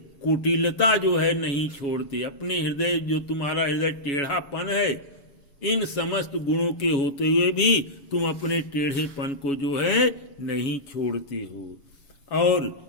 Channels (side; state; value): right; late; 7.2 ms